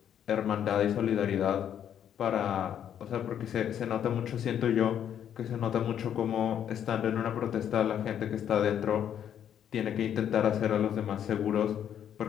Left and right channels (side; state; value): right; quieter; 9.5 dB